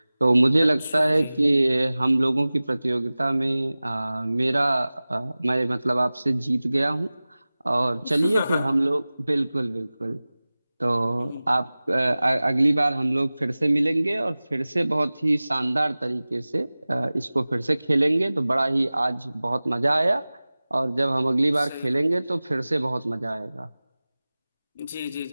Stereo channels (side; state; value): both; inverted; correlation -0.98